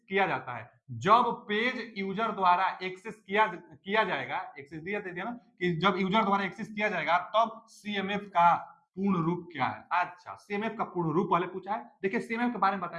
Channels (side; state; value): both; identical; correlation 1.00